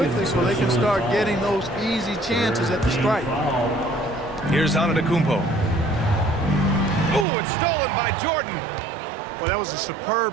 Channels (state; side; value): drops out; left; at 7.2 s